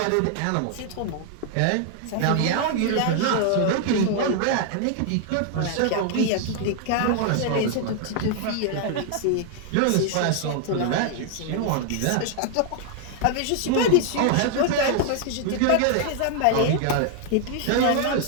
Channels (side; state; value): both; different; correlation 0.00